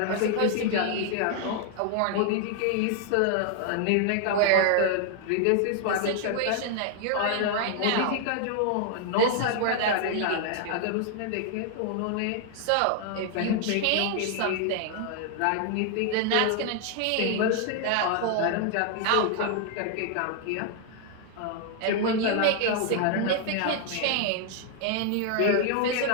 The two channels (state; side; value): different; both; correlation 0.00